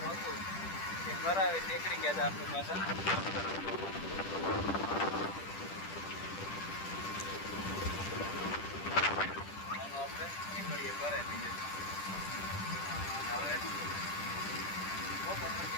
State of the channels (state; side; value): late; right; 10 ms